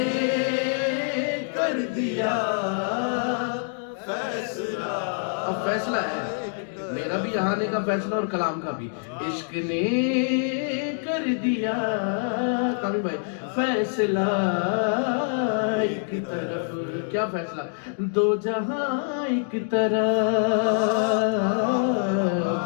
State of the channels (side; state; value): right; silent; 61 dB below the other